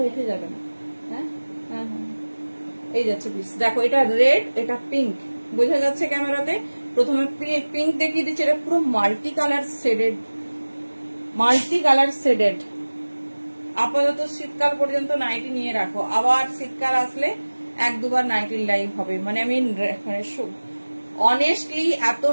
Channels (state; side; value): inverted; both; correlation -1.00